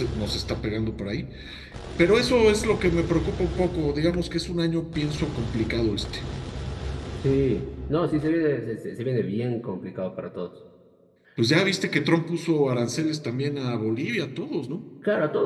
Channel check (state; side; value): identical; both; correlation 1.00